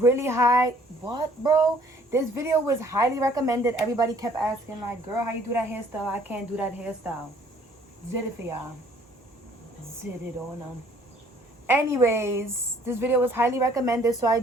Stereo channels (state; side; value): normal; both; correlation 0.58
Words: high. What, bro? This video was highly recommended. Everybody kept asking, like, girl, how you do that hairstyle? I can't do that hairstyle. Did it for y'all. Did it on them. Anyways, this video was highly recommended, so I